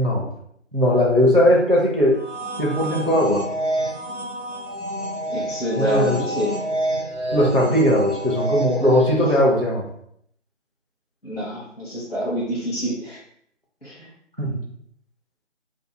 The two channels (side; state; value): both; normal; correlation 0.40